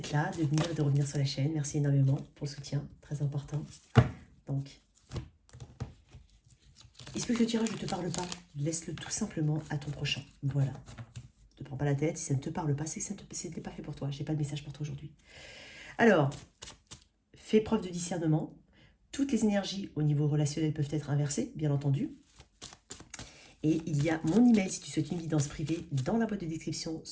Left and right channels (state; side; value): identical; both; correlation 1.00